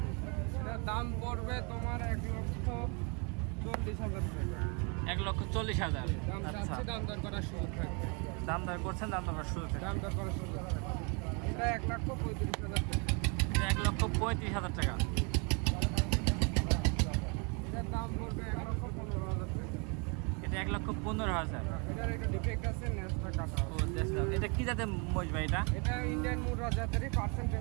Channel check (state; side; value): quieter; left; 33.6 dB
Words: এটা দাম পড়বে তোমার 1,40,000 টাকা। 1,40,000। দাম আচ্ছা, চাচ্ছি, দাম দর করার সুযোগ থাকবে। দাম দর করছেন, দাম দর করার শুরু থেকে দাম দর করার সুযোগ থাকবে। এটা 1,35,000 টাকা। এটা 1,35,000 টাকা। এটার দাম পড়বে 1,15,000 টাকা। এটা 1,15,000। এটার একটা ডিফেক্ট আছে, নেসটা কাটা। ও দেখলাম। এটা কি জাতের মহিষ ভাই? এটা ইন্ডিয়ান মুরা জাতেরই,